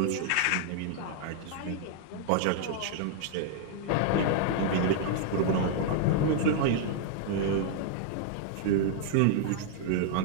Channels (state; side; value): different; both; correlation 0.00